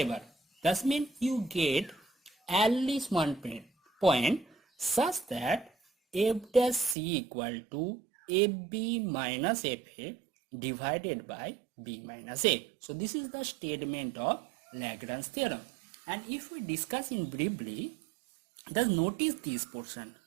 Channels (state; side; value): drops out; left; at 7.0 s